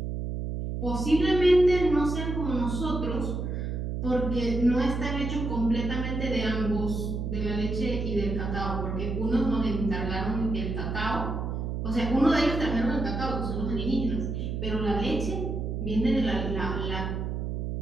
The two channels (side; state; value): right; noise; hum, 3 dB below the sound